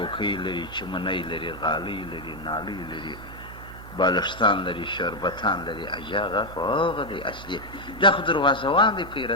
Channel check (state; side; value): noise; right; hum, 15 dB below the sound